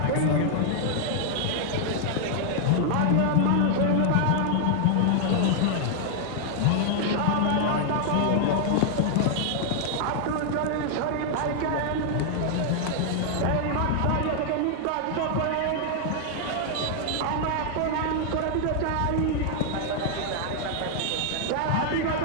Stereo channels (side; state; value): both; different; correlation -0.01